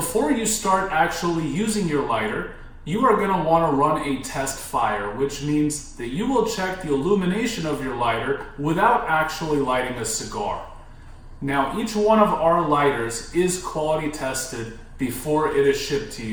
you start actually using your lighter, you are going to want to run a test fire, which means that you will check the illumination of your lighter without actually lighting a cigar. Now, each one of our lighters is quality tested before it is shipped to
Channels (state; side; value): identical; both; correlation 1.00